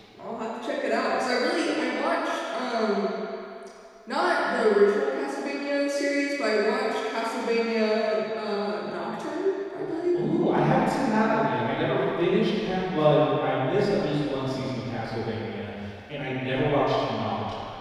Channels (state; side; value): identical; both; correlation 1.00